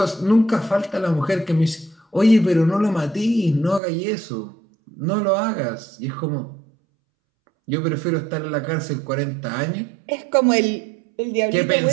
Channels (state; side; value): drops out; left; at 3.8 s